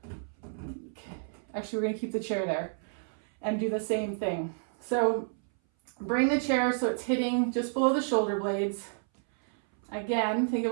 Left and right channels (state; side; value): silent; left; 58 dB below the other